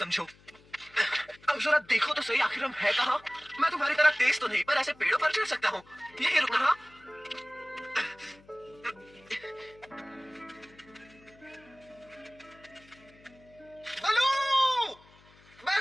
अब जरा देखो तो सही, आखिर हम है कहाँ? मैं तुम्हारी तरह तेज तो नहीं, पर ऐसे पेड़ों पर चढ़ सकता हूँ। यही रुकना। हाँ? बलू,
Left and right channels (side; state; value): left; noise; hum, 27 dB below the sound